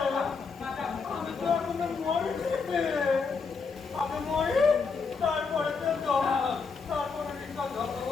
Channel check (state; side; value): quieter; right; 5.0 dB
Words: আমি তো এখন মরে আমি মরি, তারপরে তো তারপরে